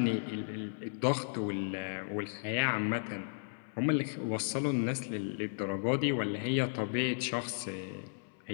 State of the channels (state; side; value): silent; right; 55 dB below the other